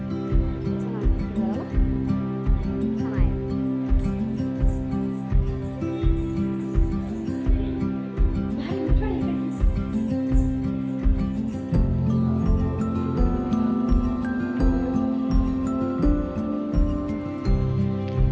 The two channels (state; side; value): identical; both; correlation 1.00